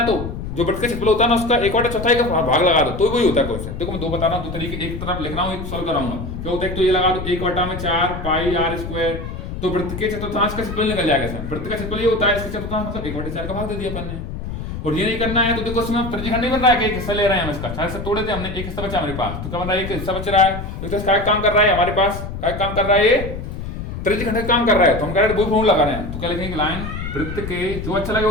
तो जो वृत्त का क्षेत्रफल होता है ना उसका 1/4 का भाग लगा दो, तो वही होता है क्वेश्चन। देखो मैं 2 बता रहा हूँ, 2 तरीके, एक तरफ लिख रहा हूँ, एक सॉल्व कराऊंगा। क्या होता है, तो ये लगा दो 1/4 पाई आर स्क्वायर, तो वृत्त के चतुर्थांश का क्षेत्रफल निकल जाएगा इसमें। वृत्त का क्षेत्रफल ये होता है, इसके चतुर्थांश मतलब 1/4 का भाग दे दिया अपन ने। और ये नहीं करना है तो देखो इसमें त्रिज्यखंड नहीं बन रहा है कि एक हिस्सा ले रहे हैं हम इसका, 4 हिस्सा तोड़े थे हमने, एक हिस्सा बचा हमारे पास, तो क्या बन रहा है एक हिस्सा बच रहा है, तो इसका काम कर रहा है हमारे पास, क्या काम कर रहा है ये त्रिज्य खंड का काम कर रहा है तो हम कह रहे हैं वही फॉर्मूला लगा रहे हैं, तो क्या लिखेंगे, लाइन वृत्त के, जो अच्छा लगे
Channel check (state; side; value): noise; left; rumble, 7 dB below the sound